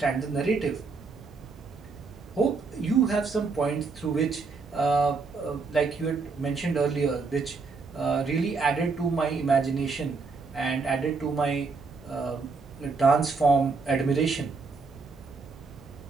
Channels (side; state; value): left; quieter; 4.4 dB